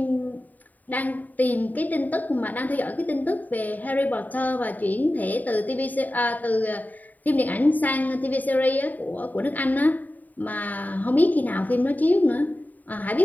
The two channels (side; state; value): right; late; 0.082 ms